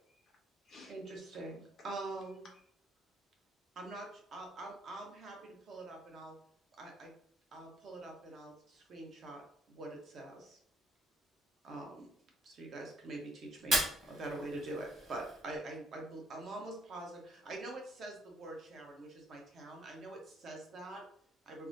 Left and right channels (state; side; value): normal; both; correlation 0.66